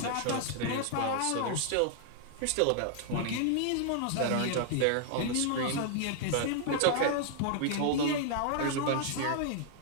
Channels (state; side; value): different; both; correlation -0.01